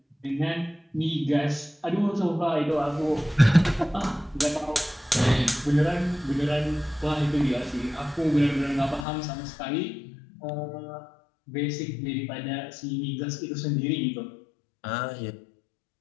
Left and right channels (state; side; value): drops out; right; at 9.1 s